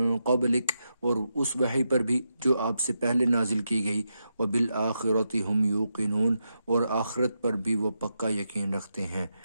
قَبْلِكَ اور اس وحی پر بھی جو آپ سے پہلے نازل کی گئی، وَبِالْآخِرَةِ هُمْ يُوقِنُونَ اور آخرت پر بھی وہ پکا یقین رکھتے ہیں۔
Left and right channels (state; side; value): inverted; both; correlation -0.86